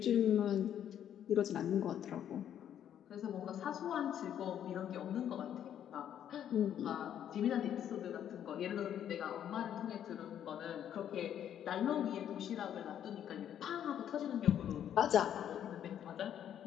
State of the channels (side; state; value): right; quieter; 9.9 dB